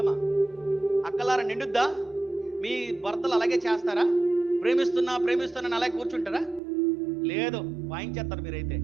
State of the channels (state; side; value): drops out; left; at 6.6 s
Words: అక్కలారా నిండుద్దా? మీ భర్తలు అలాగే చేస్తారా? ప్రేమిస్తున్నా ప్రేమిస్తున్నా అలాగే కూర్చుంటారా? లేదు, వాయించేస్తారు మీరైతే.